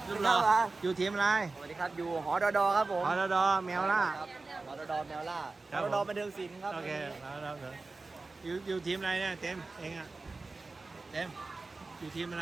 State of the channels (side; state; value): left; quieter; 3.6 dB